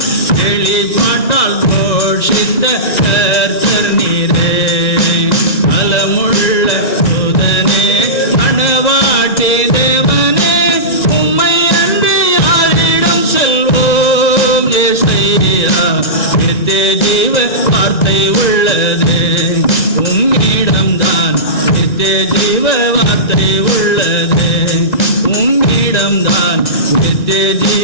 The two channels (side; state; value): right; late; 1.9 ms